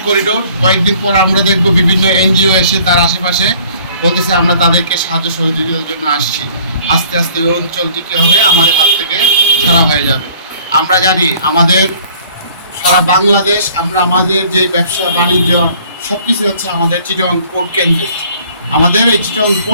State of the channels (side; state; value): both; inverted; correlation -0.55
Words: করিডোর, কয়েকদিন পর আমরা দেখব বিভিন্ন এনজিও এসে তার আশেপাশে বলতেছে আমরা তাদেরকে সাহায্য সহযোগিতার জন্য আসছি। আস্তে আস্তে ওই অঞ্চলটি কী হবে, আমাদের হাত থেকে ছাড়া হয়ে যাবে। আমরা জানি আমাদের সারা বাংলাদেশ, আমরা আমাদের যে ব্যবসা বাণিজ্য সব কিছু হচ্ছে আমাদের চিটং পোর্ট কেন্দ্রে। আমাদের এই চিটং